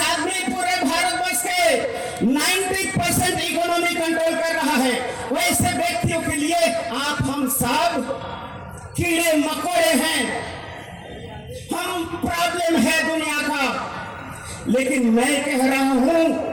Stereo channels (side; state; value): both; identical; correlation 1.00